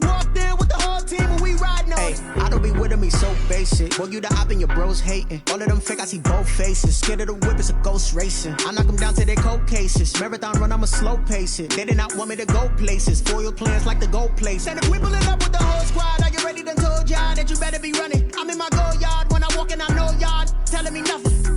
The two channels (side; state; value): both; identical; correlation 1.00